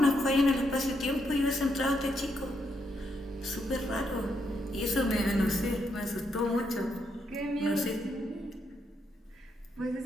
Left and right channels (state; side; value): normal; both; correlation 0.78